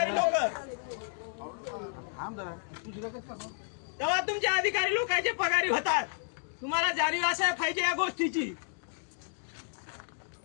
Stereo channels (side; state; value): right; silent; 57 dB below the other